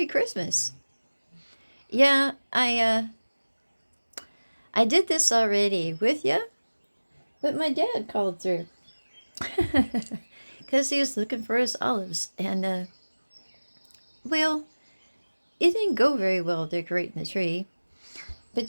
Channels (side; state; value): both; inverted; correlation -1.00